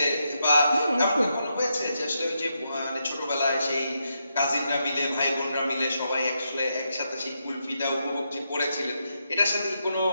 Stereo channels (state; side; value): inverted; both; correlation -0.82